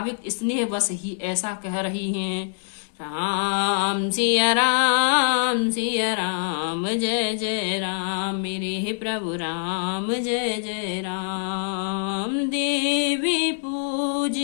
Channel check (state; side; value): silent; right; digital silence